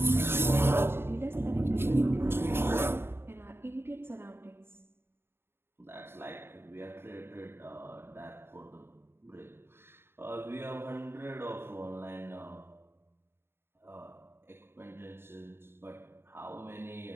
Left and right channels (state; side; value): late; left; 0.11 ms